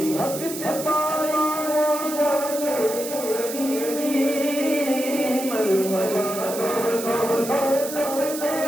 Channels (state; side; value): noise; right; hiss, 9 dB below the sound